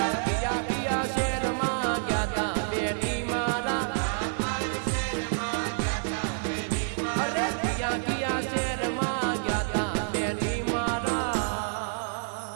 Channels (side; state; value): left; silent; 59 dB below the other